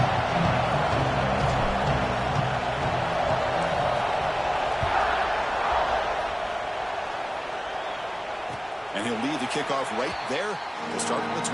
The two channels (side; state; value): both; identical; correlation 1.00